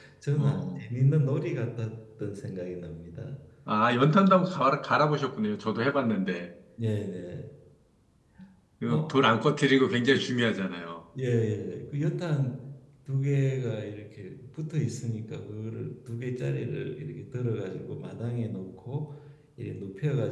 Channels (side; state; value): both; identical; correlation 1.00